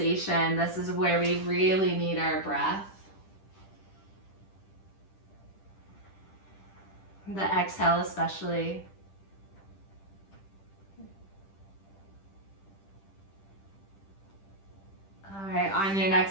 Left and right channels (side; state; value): right; late; 10 ms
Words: This is where we really need our breath. The exhale especially. All right, on your